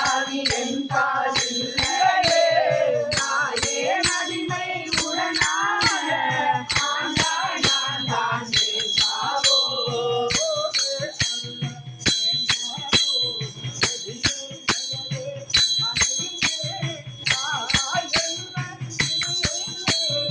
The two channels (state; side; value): identical; both; correlation 1.00